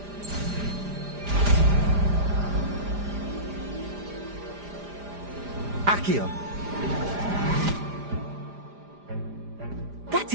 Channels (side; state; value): left; late; 4.9 ms